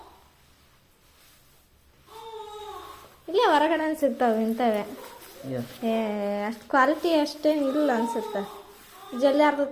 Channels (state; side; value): identical; both; correlation 1.00